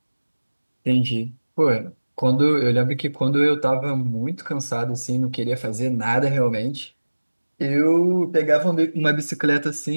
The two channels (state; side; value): inverted; both; correlation -1.00